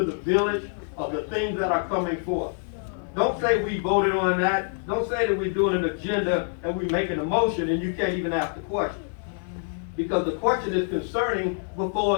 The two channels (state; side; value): silent; right; 56 dB below the other